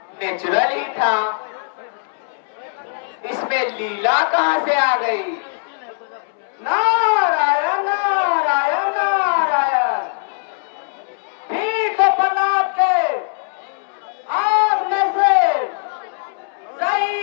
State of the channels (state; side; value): silent; right; 66 dB below the other